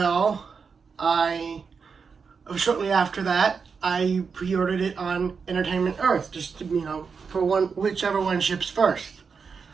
shortly after that, I pre-ordered it on Entertainment Earth, just to, for whichever one ships first.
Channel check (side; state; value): left; quieter; 5.6 dB